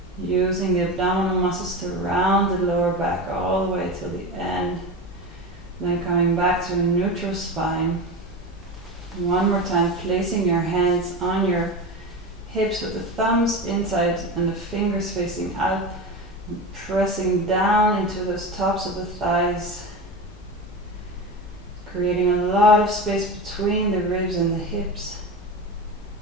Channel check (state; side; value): normal; both; correlation 0.24